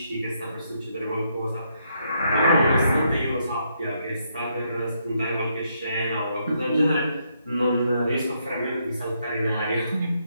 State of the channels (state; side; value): inverted; both; correlation -0.76